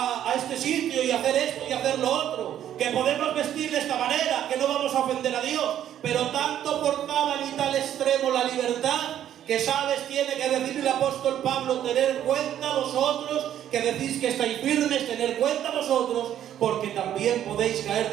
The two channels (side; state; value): left; quieter; 10.9 dB